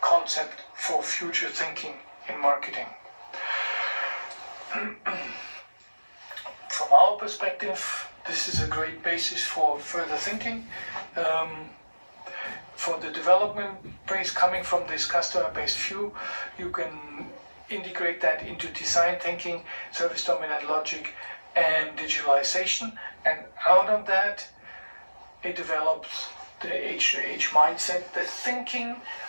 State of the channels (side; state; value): both; inverted; correlation -1.00